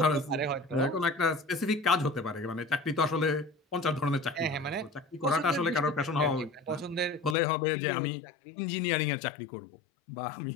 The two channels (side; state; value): right; drops out; at 7.4 s